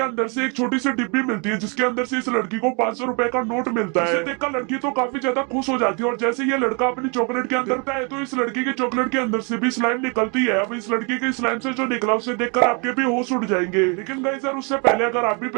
अंदर से एक छोटी सी डिब्बी मिलती है, जिसके अंदर से इस लड़की को 500 रुपए का नोट मिलता है। इसे देखकर लड़की तो काफी ज्यादा खुश हो जाती है और जैसे ये लड़का अपनी चॉकलेट के अंदर आता है तो इस लड़की के चॉकलेट के अंदर से भी स्लाइम निकलती है। अब इस लड़की के स्लाइम से जो निकला उसे देखकर आपके भी होश उड़ जाएंगे। लेकिन गाइस यार, उससे पहले अगर आप भी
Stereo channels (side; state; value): left; quieter; 34.1 dB